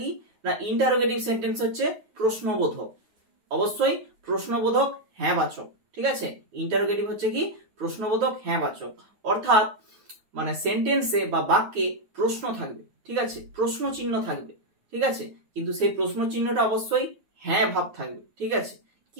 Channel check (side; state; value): left; late; 9.4 ms